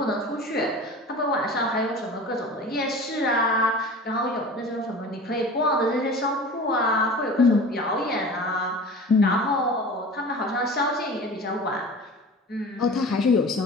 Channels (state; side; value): normal; both; correlation 0.37